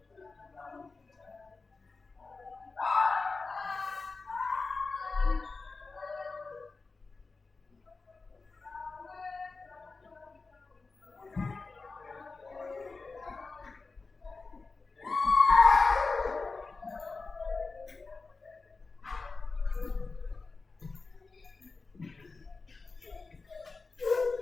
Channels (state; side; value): quieter; right; 4.0 dB